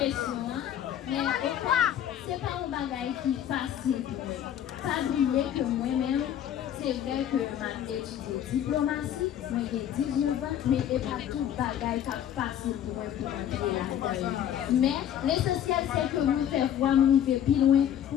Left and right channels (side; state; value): right; quieter; 10.3 dB